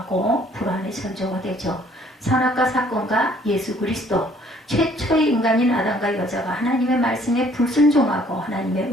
불안의 전조가 되죠. 선악과 사건과 예수 그리스도 최초의 인간인 아담과 여자가 하나님의 말씀에 불순종하고 하나님의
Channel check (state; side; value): normal; both; correlation 0.60